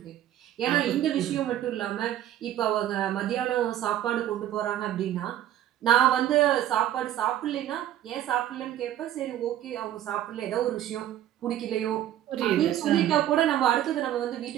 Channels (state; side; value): quieter; left; 12.1 dB